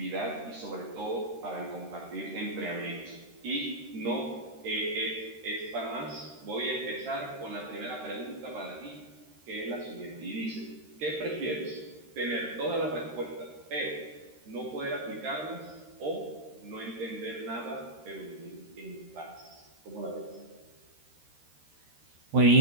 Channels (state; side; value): late; left; 13 ms